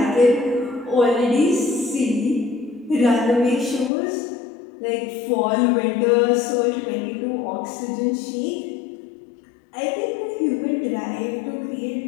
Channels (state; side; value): drops out; right; at 3.9 s